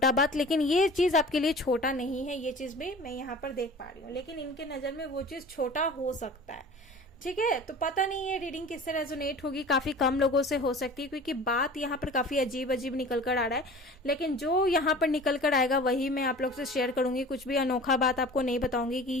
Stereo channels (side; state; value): both; normal; correlation 0.41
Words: बात। लेकिन ये चीज़ आपके लिए छोटा नहीं है, ये चीज़ भी मैं यहाँ पर देख पा रही हूँ, लेकिन इनके नज़र में वो चीज़ छोटा हो सकता है, ठीक है। तो पता नहीं ये रीडिंग किससे रेजोनेट होगी, काफी कम लोगों से हो सकती है क्योंकि बात यहाँ पर काफी अजीब अजीब निकल कर आ रहा है, लेकिन जो यहाँ पर निकल कर आएगा वही मैं आप लोग से शेयर करूंगी, कुछ भी अनोखा बात आपको नहीं बताऊंगी कि